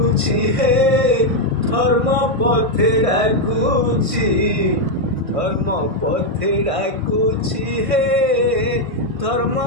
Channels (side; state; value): left; late; 1.5 ms